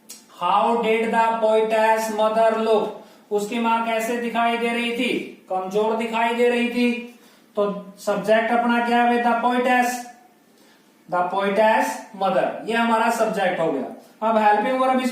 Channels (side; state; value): both; identical; correlation 1.00